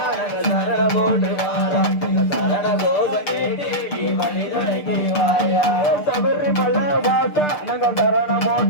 நாங்க சரணம் போட்டு வாரோம் எங்க சரண தோஷம் கேட்டு நீ வழி துணைக்கு வாயா சபரிமலை வாசா நாங்க சரணம்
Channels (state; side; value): late; right; 6.7 ms